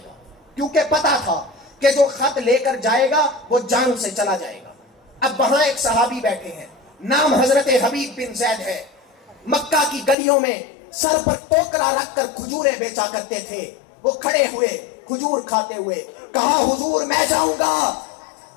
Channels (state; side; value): drops out; right; at 10.2 s